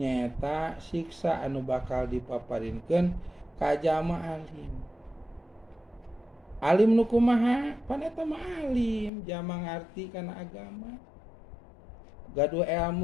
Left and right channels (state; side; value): drops out; right; at 9.1 s